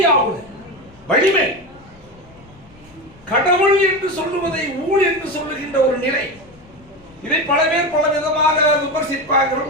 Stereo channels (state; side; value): noise; left; rumble, 25 dB below the sound